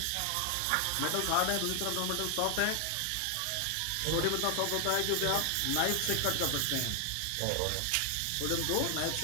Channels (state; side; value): different; both; correlation 0.00